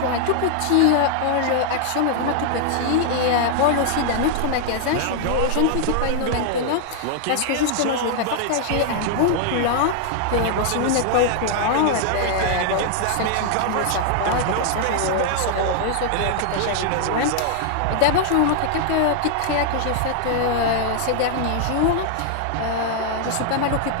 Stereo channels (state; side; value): different; both; correlation 0.00